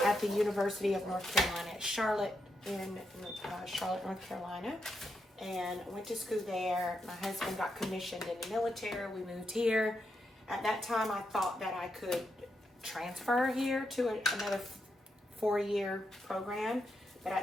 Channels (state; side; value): normal; both; correlation 0.83